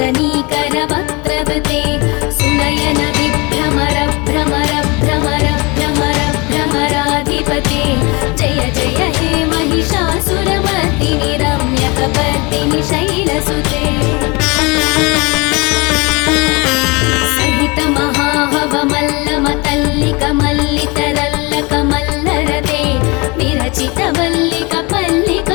सुनयन विभ्रमर भ्रमर भ्रमर भ्रमर भ्रमराधिपते जय जय हे महिषासुरमर्दिनि रम्यकपर्दिनि शैलसुते सहित महाहवमल्लमतल्लिकमल्लितरल्लकमल्लरते विरचित वल्लिक पल्लिक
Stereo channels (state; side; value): quieter; right; 27.1 dB